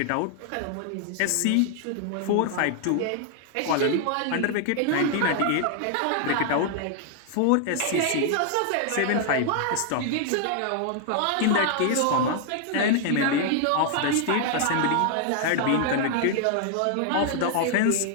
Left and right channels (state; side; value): different; both; correlation 0.00